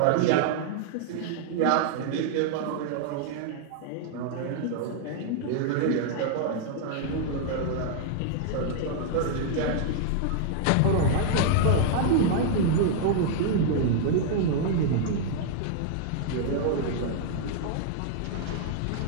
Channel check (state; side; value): different; both; correlation -0.01